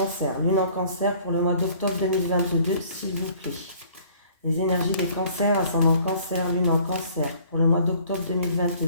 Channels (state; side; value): inverted; both; correlation -0.55